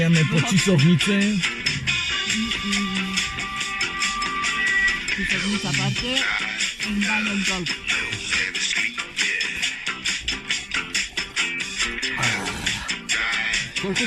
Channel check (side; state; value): both; identical; correlation 1.00